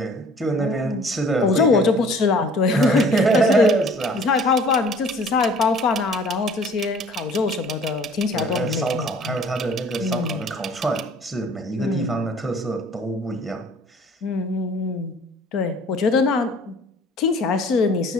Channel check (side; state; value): both; normal; correlation 0.51